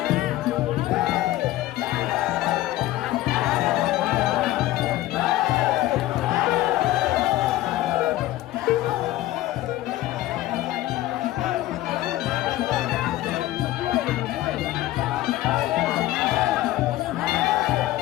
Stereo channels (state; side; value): quieter; right; 15.6 dB